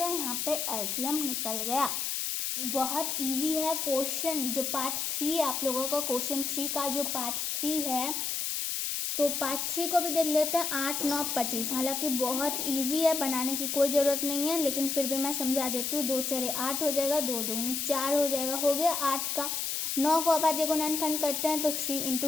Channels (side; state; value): left; noise; hiss, 1 dB below the sound